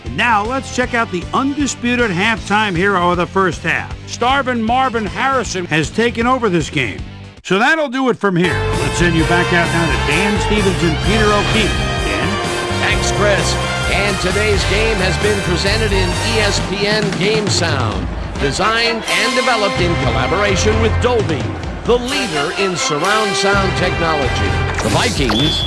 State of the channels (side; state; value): both; identical; correlation 1.00